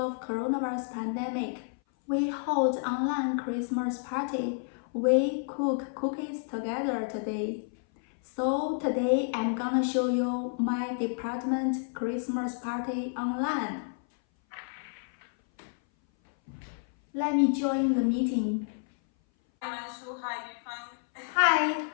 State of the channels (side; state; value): right; silent; 57 dB below the other